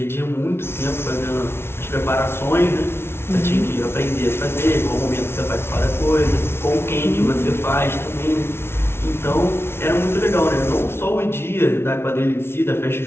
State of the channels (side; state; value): right; late; 0.12 ms